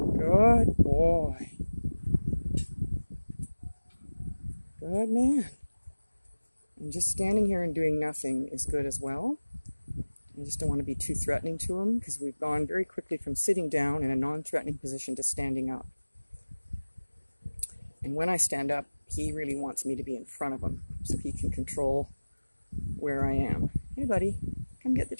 Good boy. Good man. And just standing here and doing nothing is good as well. I just don't want to be too threatening to him because we've gone very quickly from sitting down in a non-threatening position to standing up. And when I stand up, he really wants me to be in front of him so he can control where I am. Hey, buddy, come get the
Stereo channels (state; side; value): inverted; both; correlation -1.00